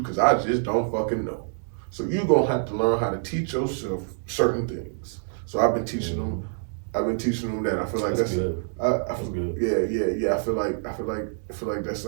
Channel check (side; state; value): left; silent; digital silence